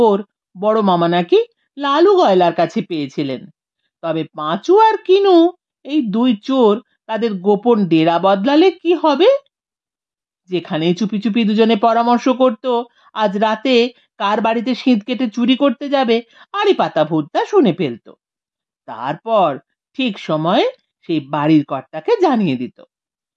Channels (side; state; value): both; identical; correlation 1.00